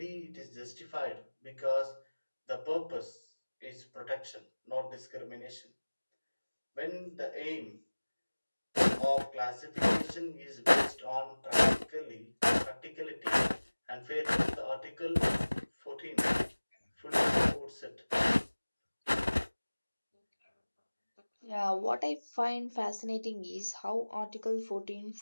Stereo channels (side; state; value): both; inverted; correlation -1.00